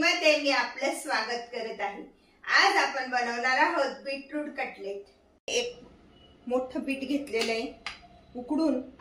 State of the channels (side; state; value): both; identical; correlation 1.00